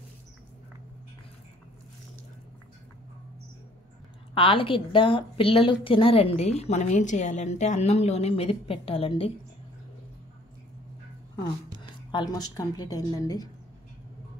ఆలుగడ్డ పిల్లలు తినరండి. మనం ఏం చేయాలంటే అన్నంలోనే మెదిపి పెట్టాలండి. ఆల్మోస్ట్ కంప్లీట్ అయిందండి.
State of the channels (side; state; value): both; normal; correlation 0.57